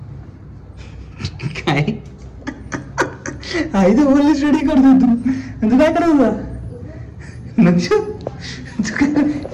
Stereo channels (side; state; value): both; identical; correlation 1.00